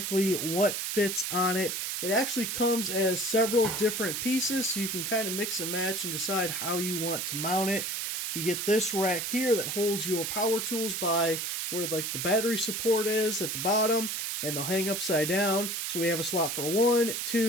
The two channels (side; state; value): right; noise; hiss, 2 dB below the sound